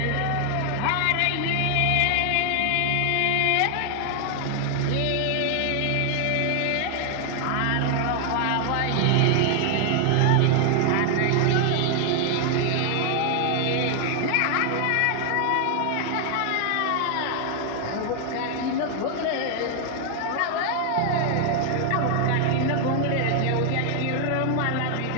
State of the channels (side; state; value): both; different; correlation 0.00